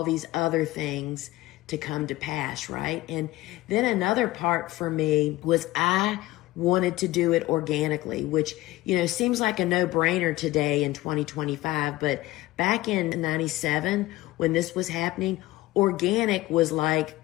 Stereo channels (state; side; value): quieter; right; 17.8 dB